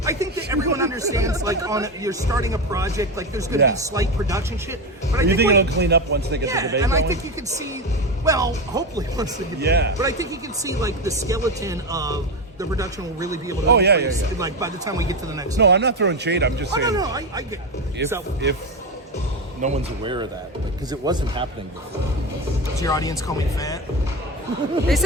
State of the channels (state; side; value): normal; both; correlation 0.16